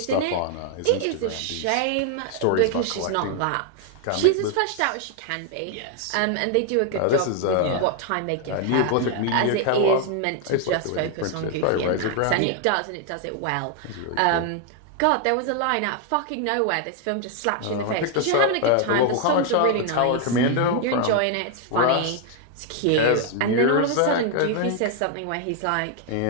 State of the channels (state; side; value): different; both; correlation 0.00